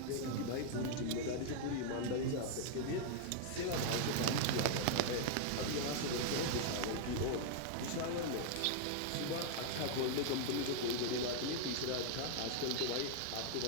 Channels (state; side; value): different; both; correlation 0.00